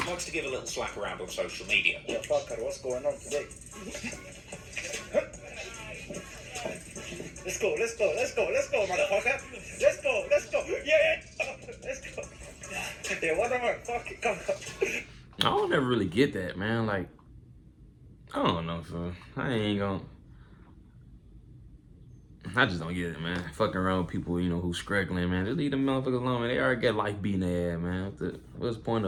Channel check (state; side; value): identical; both; correlation 1.00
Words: likes to give a little slap around on social media. Yeah, fucker, what's going on today? Let's go, motherfucker. Let's go. Yeah, let's go. Yeah, whatever. Fuck it, come on. I don't ever really get that, man. Like, I don't know, so I just don't get it, man. Fucking around with people, you know, who's struggling, man. Just leave them motherfuckers alone, man. They already got life beating their ass, man. What's the point